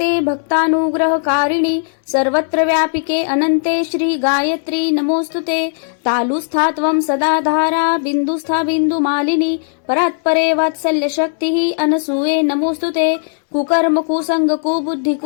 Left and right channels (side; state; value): right; silent; digital silence